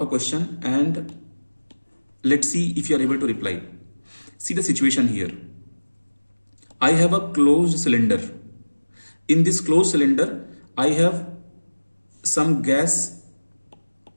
a question and let's see if you are able to reply. See the situation here. I have a closed cylinder. In this closed cylinder, I have some gas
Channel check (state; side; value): inverted; both; correlation -1.00